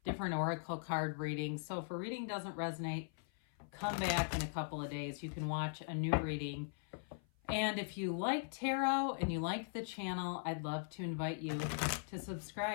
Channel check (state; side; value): silent; right; 51 dB below the other